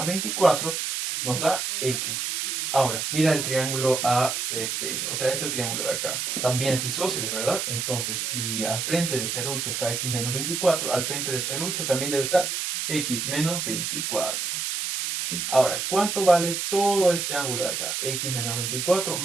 24, nos da x. Ahora, mira el triángulo ACP, o sea, este triángulo de acá. También es isósceles, ¿verdad? Entonces, si al frente de serrucho está x menos 24, al frente de serrucho también debe estar x menos 24. Ahora, ¿cuánto vale todo este ángulo de acá? X menos 24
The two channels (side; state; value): right; noise; hiss, 2 dB below the sound